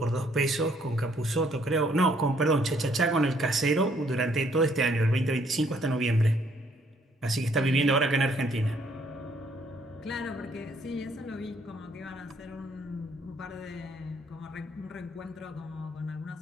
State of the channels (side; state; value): both; normal; correlation 0.66